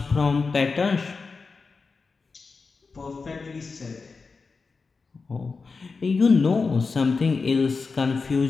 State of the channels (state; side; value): quieter; right; 4.5 dB